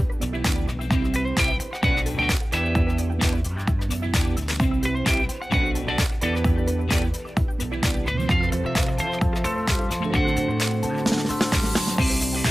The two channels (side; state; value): both; normal; correlation 0.96